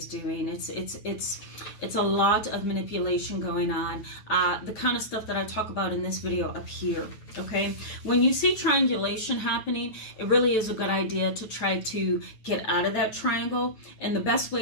doing. It's a lot of manipulation going on. The kind of stuff that I talk about in this video up here. Okay, when you see triangulation happening, it really is a good idea to try to get out of that triangle. And the best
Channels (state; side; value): late; right; 9.2 ms